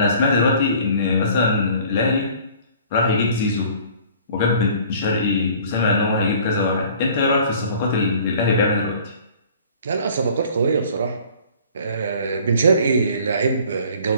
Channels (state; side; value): inverted; both; correlation -0.51